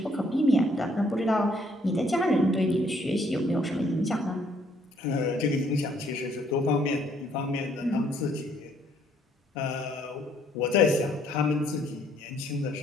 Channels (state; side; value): normal; both; correlation 0.66